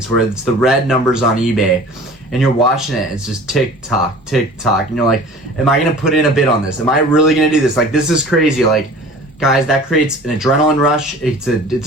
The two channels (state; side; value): normal; both; correlation 0.43